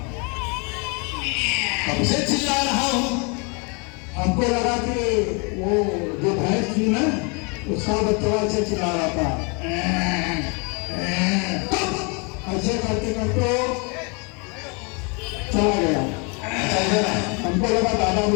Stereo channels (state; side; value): quieter; right; 32.5 dB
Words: कब से चिल्ला रहा हूँ? हमको लगा कि वो जो भैंस थी ना, उसका बच्चा ऐसे चिल्ला रहा था। ऐसे करते करते चला गया। हमको लगा दादा